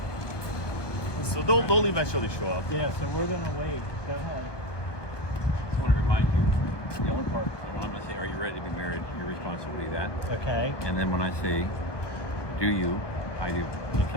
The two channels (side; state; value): right; late; 1.2 ms